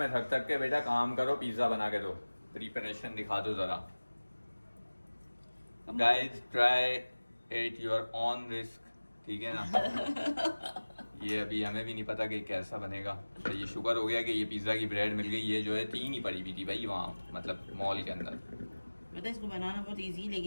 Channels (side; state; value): both; inverted; correlation -1.00